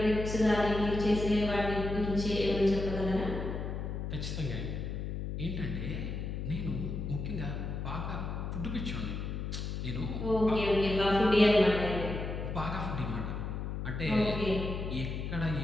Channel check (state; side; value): noise; left; hum, 4 dB below the sound